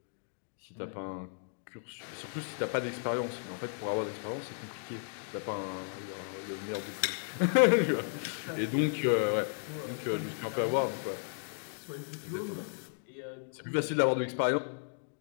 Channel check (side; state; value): right; silent; digital silence